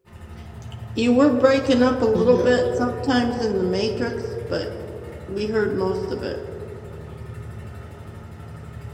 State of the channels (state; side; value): identical; both; correlation 1.00